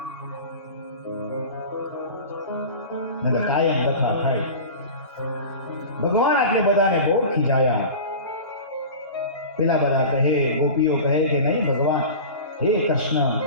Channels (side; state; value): both; inverted; correlation -0.34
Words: કાયમ દફા થાય. ભગવાન આટલે બધાને બહુ ખીજાયા. પેલા બધા કહે, ગોપીઓ કહે કે નહીં ભગવાન, હે કૃષ્ણ,